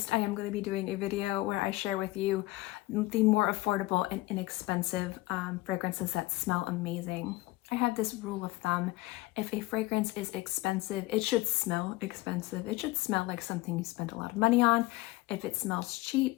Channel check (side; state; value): right; quieter; 19.5 dB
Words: I am going to be doing a video where I share with you the more affordable and inexpensive fragrances that smell amazing. I have this rule of thumb: if a fragrance is expensive, it should smell expensive. It should smell like something you spent a lot of money on. If it smells